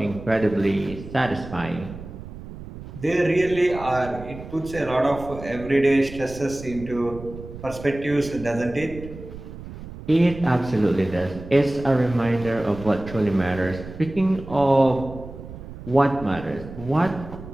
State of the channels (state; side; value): noise; right; rumble, 13 dB below the sound